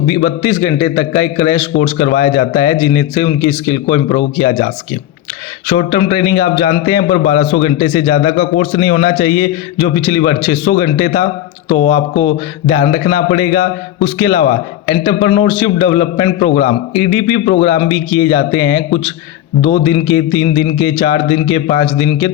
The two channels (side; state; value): right; quieter; 12.7 dB